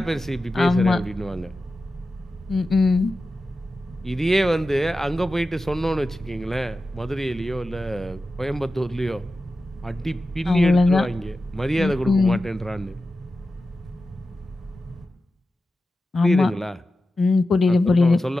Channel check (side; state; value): both; normal; correlation 0.92